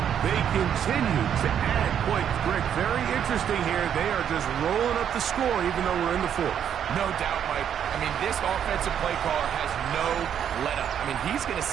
They continue to add points. Greg, very interesting here. They are just rolling up the score even though we're in the 4th. No doubt, Mike. I mean, this offensive play caller has no let-up. I mean, he's going to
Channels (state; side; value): quieter; left; 9.0 dB